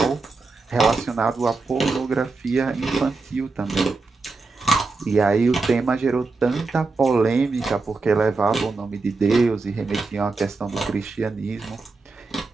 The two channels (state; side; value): quieter; left; 3.9 dB